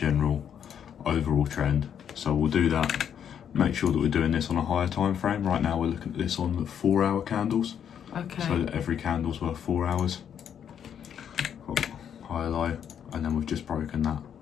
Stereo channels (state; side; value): quieter; right; 8.6 dB